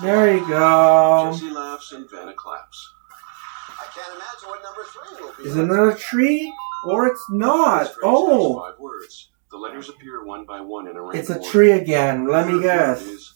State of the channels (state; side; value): silent; left; digital silence